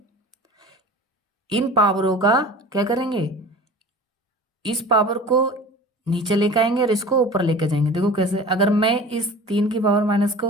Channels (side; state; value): both; normal; correlation 0.40